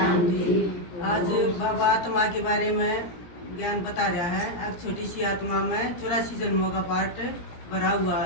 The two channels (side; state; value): right; late; 17 ms